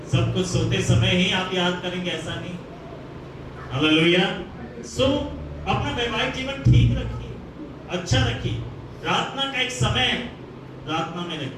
सब कुछ सोते समय ही आप याद करेंगे, ऐसा नहीं। हालेलुया। सो अपना वैवाहिक जीवन ठीक रखिए, अच्छा रखिए। प्रार्थना का एक समय है, प्रार्थना में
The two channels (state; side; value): identical; both; correlation 1.00